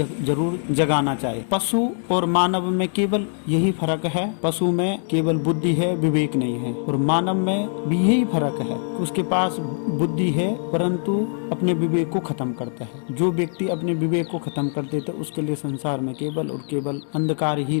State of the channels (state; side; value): silent; right; 61 dB below the other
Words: जगाना चाहिए। पशु और मानव में केवल यही फर्क है, पशु में केवल बुद्धि है, विवेक नहीं है, और मानव में भी यही फर्क है कि उसके पास बुद्धि है परंतु अपने विवेक को खत्म करता है। जो व्यक्ति अपने विवेक को खत्म कर देता है उसके लिए संसार में केवल और केवल अंधकार ही